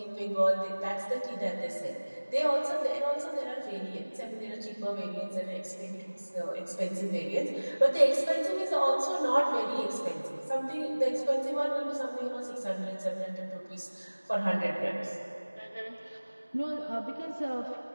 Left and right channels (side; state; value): both; inverted; correlation -1.00